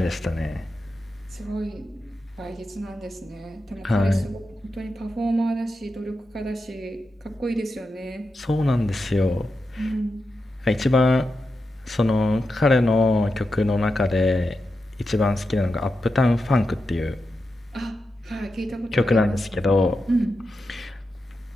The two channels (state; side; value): normal; both; correlation 0.89